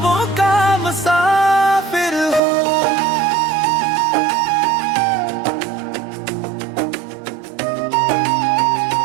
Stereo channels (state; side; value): drops out; left; at 2.4 s